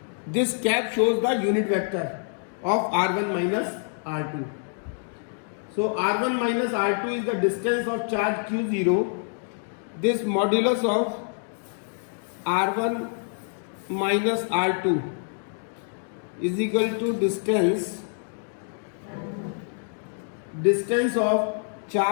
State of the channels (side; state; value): right; silent; 61 dB below the other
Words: This cap shows the unit vector of r1 minus r2. So r1 minus r2 is the distance of charge q0. This modulus of r1 minus r2 is equal to distance of